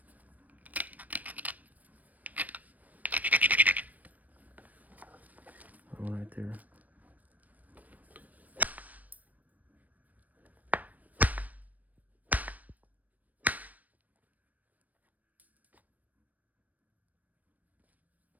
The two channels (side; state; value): left; late; 0.076 ms